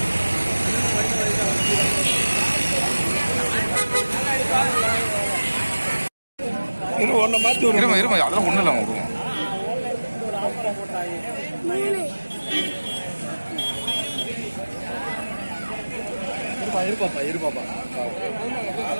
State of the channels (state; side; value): inverted; both; correlation -1.00